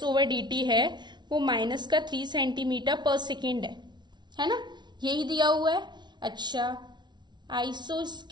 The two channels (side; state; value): left; late; 0.21 ms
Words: ओवर dt है वो माइनस का 3 सेंटीमीटर पर सेकेंड है ना, यही दिया हुआ है। अच्छा,